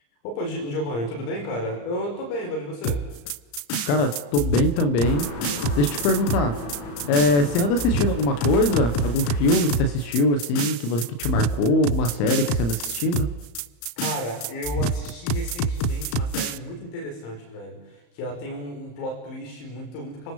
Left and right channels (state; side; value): late; right; 34 ms